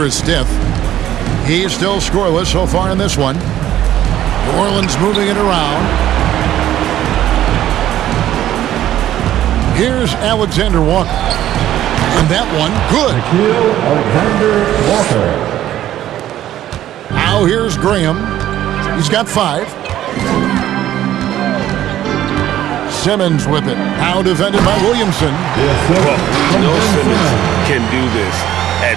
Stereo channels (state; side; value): quieter; left; 12.5 dB